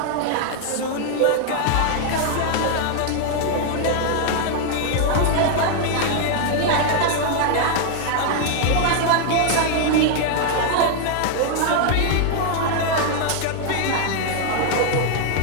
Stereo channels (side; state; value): both; different; correlation 0.00